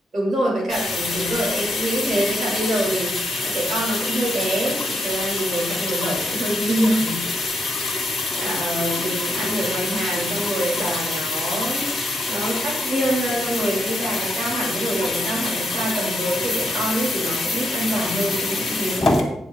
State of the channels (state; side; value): normal; both; correlation 0.78